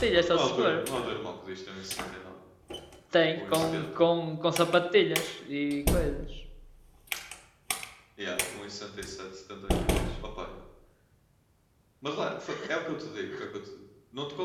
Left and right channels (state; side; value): identical; both; correlation 1.00